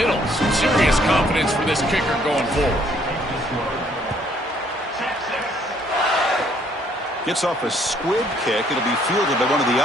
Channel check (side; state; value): both; normal; correlation 0.65